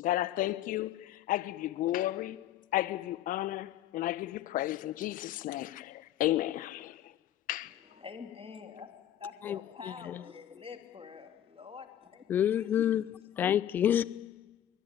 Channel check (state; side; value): quieter; right; 11.7 dB